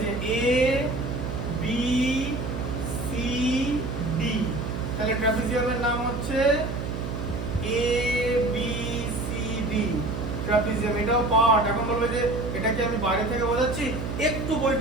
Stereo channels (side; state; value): right; noise; hum, 4 dB below the sound